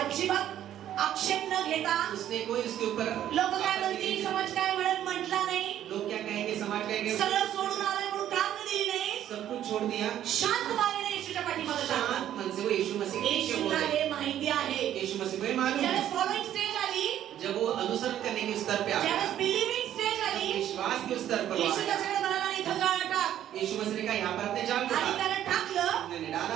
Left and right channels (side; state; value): left; quieter; 11.4 dB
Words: आक्षेप न घेता, उसने कोई उसके ऊपर लोक काय म्हणतील, समाज काय म्हणत म्हटला नाही, लोग क्या कहेंगे, समाज कहेंगे, सगळं सोडून आलाय म्हणून कारण दिली नाही, सब कुछ छोड़ दिया, शांत मानेने येशूच्या पाठीमागे शांत लागला. मन से वो यीशु मसीह के पीछे येशूला बोले। हे माहिती आहे. यीशु मसीह को ये मालूम ज्यावेळेस है। फॉलोइंग स्टेज आली, जब वो अनुसरण करने के स्तर पे आया, ज्यावेळेस बिलीविंग स्टेज आली, विश्वास के स्तर पर वो येशू आया, त्याच्याकडे म्हणाला, इथं जाळ टाक. यीशु मसीह ने कहा यहाँ पर अपने जाल को आणि डाल। त्याने टाकलं. उन्होंने